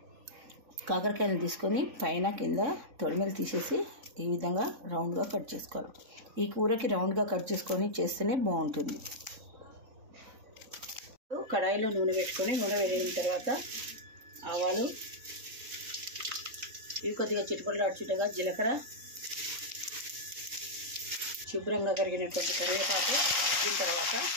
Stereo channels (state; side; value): late; left; 3.8 ms